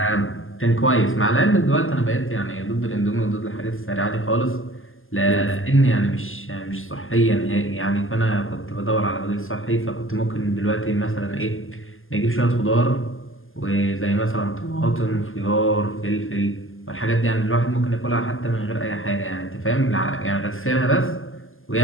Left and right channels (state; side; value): late; right; 0.59 ms